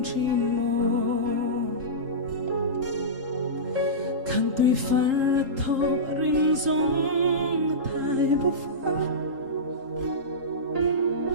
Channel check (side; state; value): left; late; 3.8 ms